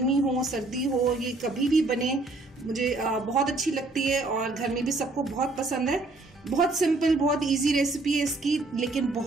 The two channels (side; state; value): left; quieter; 3.2 dB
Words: हो सर्दी हो ये कभी भी बने मुझे बहुत अच्छी लगती है और घर में भी सबको बहुत पसंद है। बहुत सिंपल बहुत इजी रेसिपी है इसकी, लेकिन